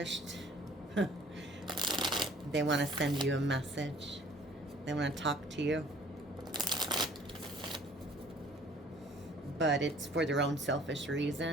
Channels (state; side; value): normal; both; correlation 0.53